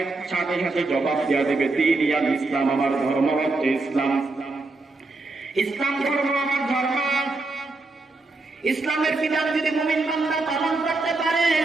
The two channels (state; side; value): quieter; left; 3.3 dB